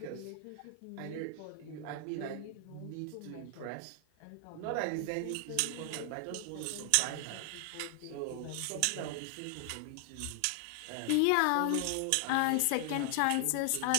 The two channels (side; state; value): both; different; correlation 0.00